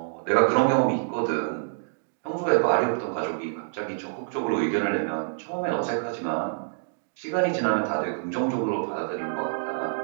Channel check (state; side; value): silent; left; digital silence